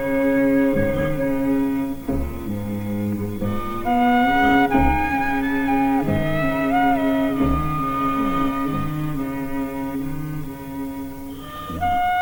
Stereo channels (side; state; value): both; identical; correlation 1.00